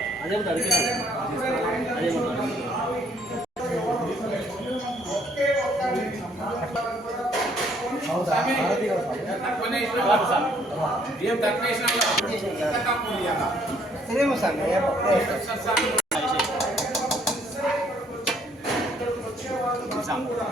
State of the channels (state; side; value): normal; both; correlation 0.65